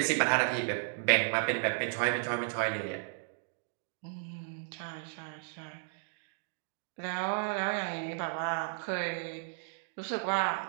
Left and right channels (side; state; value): left; silent; digital silence